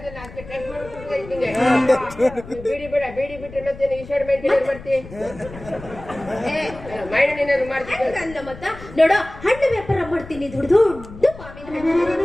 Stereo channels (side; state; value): left; noise; rumble, 16 dB below the sound